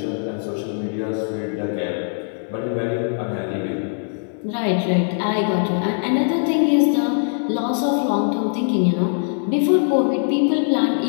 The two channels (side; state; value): right; silent; 65 dB below the other